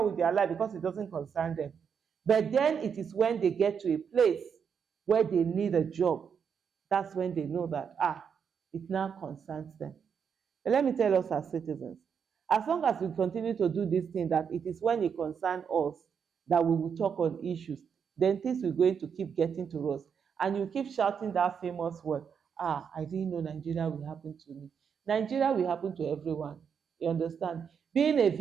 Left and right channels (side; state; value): left; quieter; 7.0 dB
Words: with their life because it doesn't concern them. But then it is when they get to a place where they need a job, that's when they know that it now concerns them. But let me tell us as citizens, as long as we continue to do this thing, that it is when it concerns us that we will talk on issues, then things will going to keep getting to us. And you keep shouting that famous word, I didn't know Nigeria will happen to me. Nigeria will happen to everyone. You understand? Being a